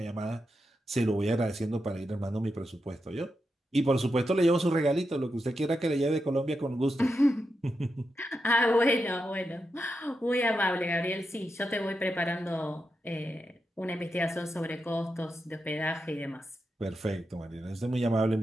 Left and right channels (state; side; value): normal; both; correlation 0.87